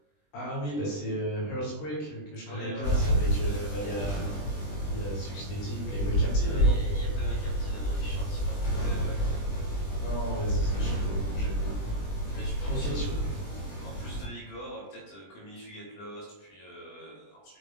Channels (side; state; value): right; late; 20 ms